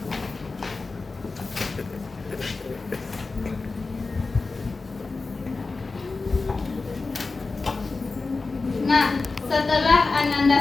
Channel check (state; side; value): quieter; right; 3.8 dB